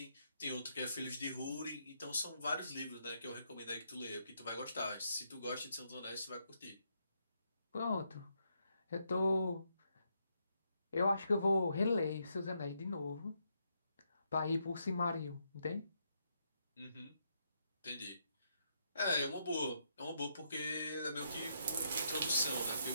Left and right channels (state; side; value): inverted; both; correlation -0.78